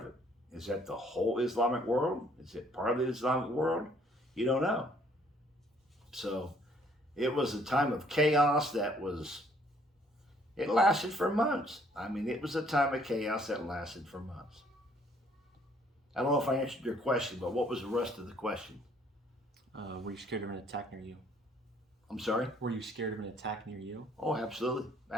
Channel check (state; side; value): normal; both; correlation 0.62